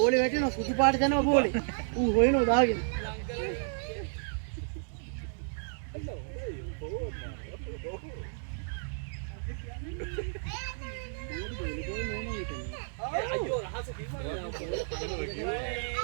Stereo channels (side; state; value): left; silent; digital silence